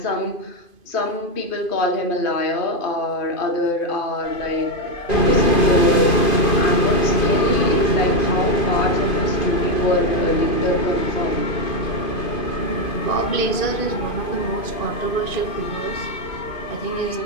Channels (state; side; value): late; right; 2.5 ms